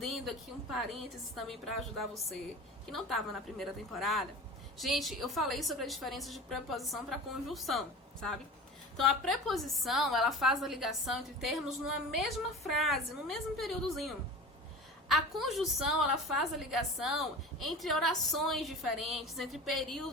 aqui, um parênteses também para ajudar você, que não estava na primeira temporada. Gente, eu falei sobre a diferença de preposição para conjunção, sabe? Então a preposição, ela faz a ligação entre termos numa mesma frase, no mesmo períodozinho. A conjunção, ela faz a ligação entre orações diferentes, entre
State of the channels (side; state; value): both; normal; correlation 0.35